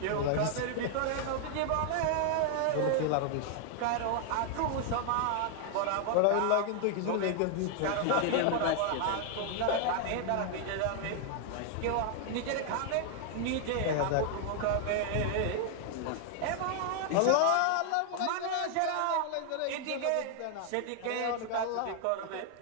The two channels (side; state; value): both; different; correlation 0.00